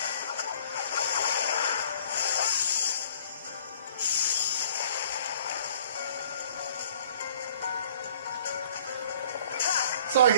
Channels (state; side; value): inverted; both; correlation -0.54